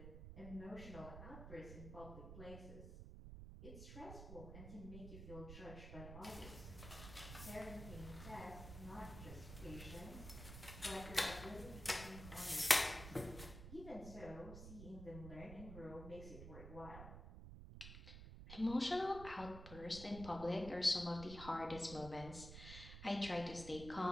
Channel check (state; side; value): noise; right; rumble, 10 dB below the sound